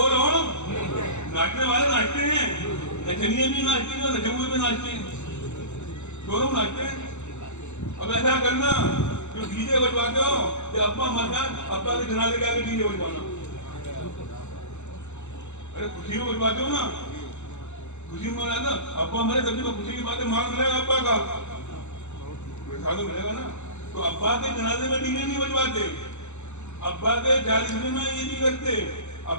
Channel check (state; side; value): late; right; 0.83 ms